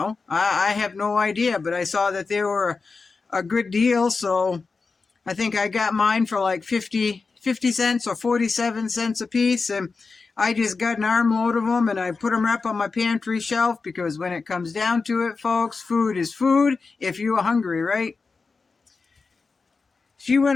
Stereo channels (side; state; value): right; quieter; 4.4 dB